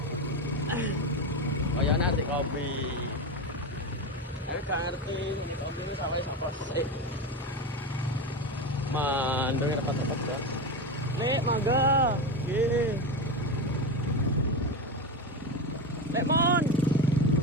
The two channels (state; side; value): normal; both; correlation 0.18